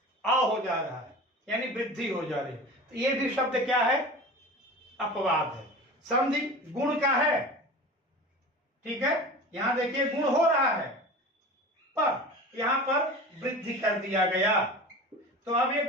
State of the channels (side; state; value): both; normal; correlation 0.35